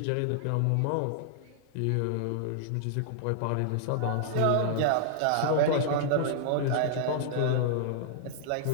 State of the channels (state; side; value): different; both; correlation -0.01